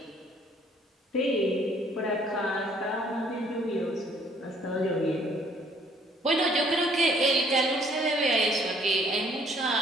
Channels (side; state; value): both; normal; correlation 0.61